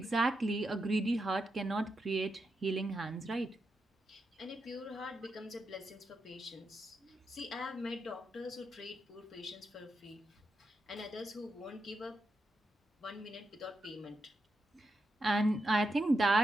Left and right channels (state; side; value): normal; both; correlation 0.85